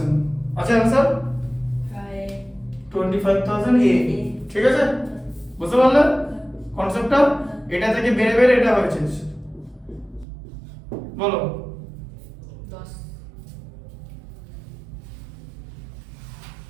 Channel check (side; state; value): left; drops out; at 10.2 s